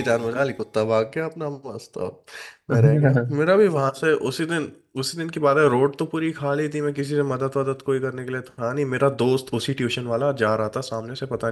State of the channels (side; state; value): both; identical; correlation 1.00